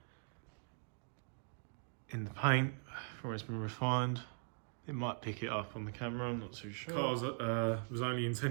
in the paint from where it's been refined. It might pick it up on the camera, I'm not too sure. Car was only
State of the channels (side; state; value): left; silent; 51 dB below the other